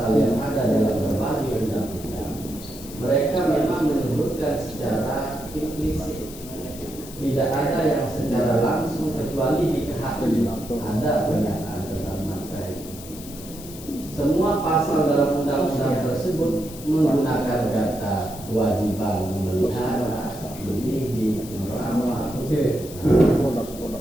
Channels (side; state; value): left; noise; hiss, 15 dB below the sound